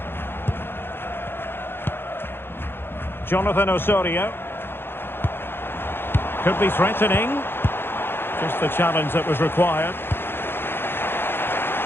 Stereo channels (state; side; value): late; right; 0.10 ms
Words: Jonathan Osorio. Could be threatening. Just the challenge that was required.